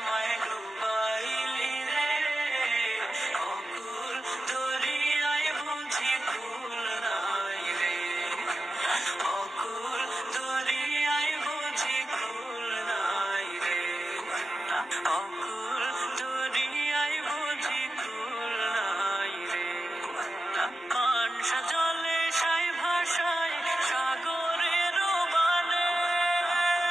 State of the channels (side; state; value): both; normal; correlation 0.91